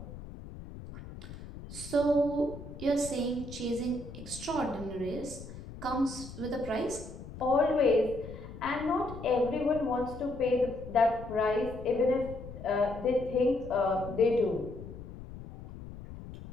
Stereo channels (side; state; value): left; noise; rumble, 13 dB below the sound